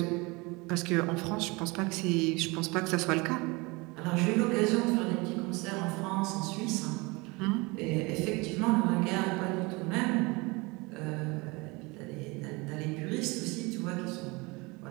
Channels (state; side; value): quieter; left; 25.5 dB